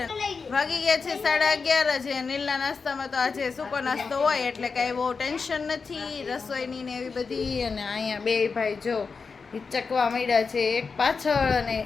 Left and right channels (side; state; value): right; quieter; 5.0 dB